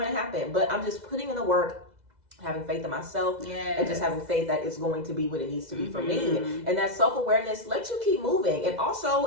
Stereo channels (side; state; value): left; late; 2.0 ms